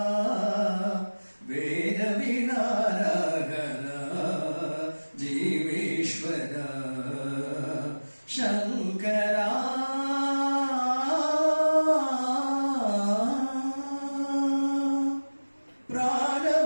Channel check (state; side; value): inverted; both; correlation -1.00